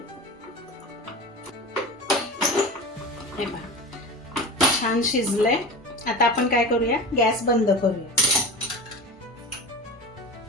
हे पहा छान शिजलंय. आता आपण काय करूया, गॅस बंद करूया.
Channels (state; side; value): normal; both; correlation 0.30